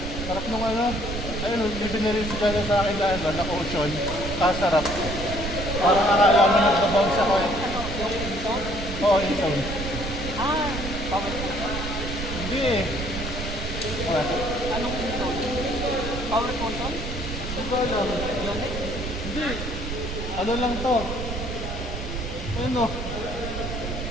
Sarap nung ano. Ayun, bibiniril si Gana sa akin na ano, na ocean. Kasarap. Parang akala mo nagbabounce ako. ano, yung Inson? Oo, insound. Ah, power. Hindi eh. Wala. Anong Inson? Power console? Hindi ko alam. Yonex? Hindi. Ano lang to? Ano?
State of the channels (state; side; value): noise; right; rumble, 6 dB below the sound